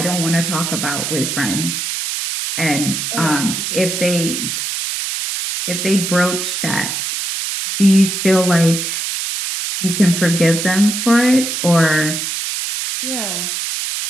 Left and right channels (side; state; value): right; noise; hiss, 3 dB below the sound